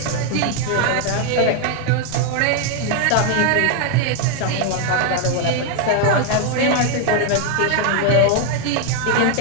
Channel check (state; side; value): different; both; correlation 0.01